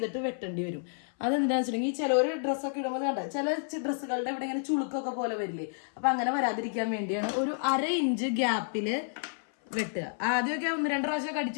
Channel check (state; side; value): silent; right; 58 dB below the other